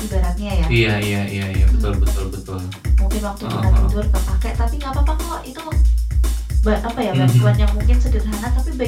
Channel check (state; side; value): identical; both; correlation 1.00